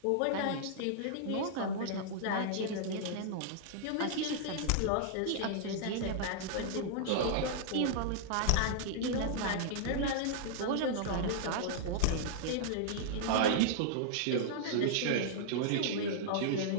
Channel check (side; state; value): both; different; correlation -0.01